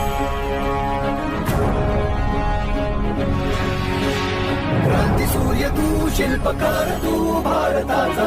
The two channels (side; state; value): both; identical; correlation 1.00